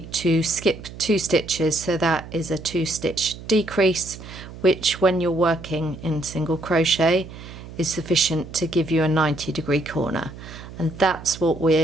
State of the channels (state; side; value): noise; right; hum, 14 dB below the sound